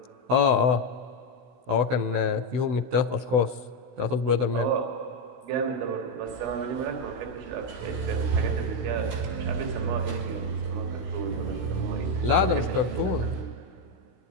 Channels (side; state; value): left; late; 16 ms